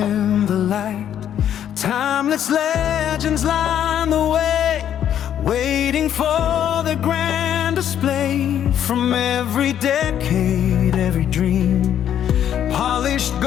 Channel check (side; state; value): right; quieter; 10.0 dB